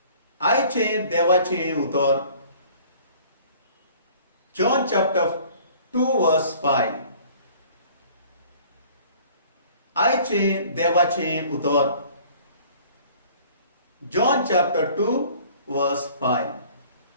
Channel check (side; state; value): both; inverted; correlation -0.51